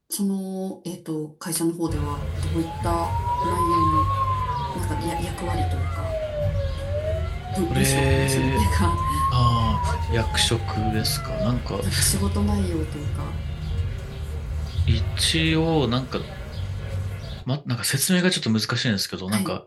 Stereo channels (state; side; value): identical; both; correlation 1.00